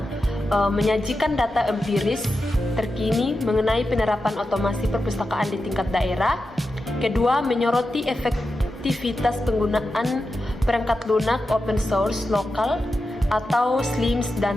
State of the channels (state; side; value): normal; both; correlation 0.90